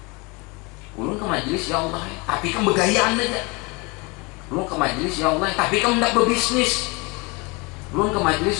Ulun ke majelis ya Allah, tapi kamu begayaan aja. Ulun ke majelis ya Allah, tapi kamu tidak berbisnis. Ulun ke majelis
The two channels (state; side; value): quieter; right; 27.5 dB